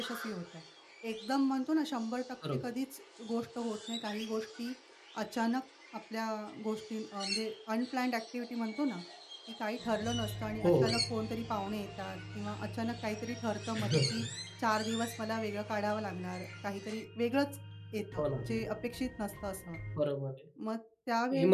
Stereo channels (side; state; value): both; identical; correlation 1.00